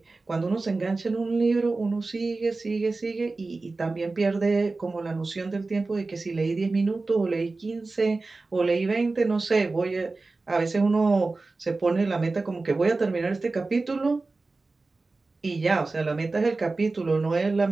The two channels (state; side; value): quieter; left; 3.6 dB